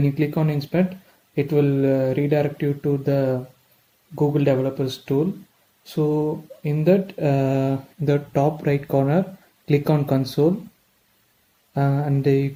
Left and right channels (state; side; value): identical; both; correlation 1.00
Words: you click on inspect, it will redirect you to the Google Developers tool. So in the top right corner, click on console and you